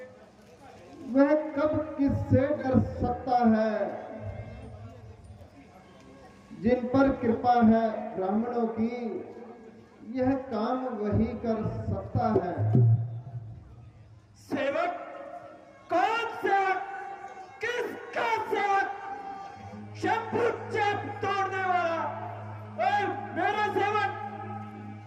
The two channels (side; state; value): both; identical; correlation 1.00